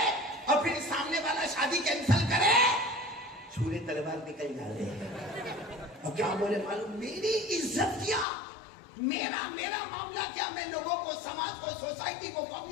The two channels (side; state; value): right; drops out; at 8.2 s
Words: اور پھر سامنے والا شادی کینسل کرے, چھوڑے تلوار نکل جاوے. اور کیا بولے معلوم, میری عزت کیا, میرا معاملہ کیا, میں لوگوں کو, سماج کو, سوسائٹی کو,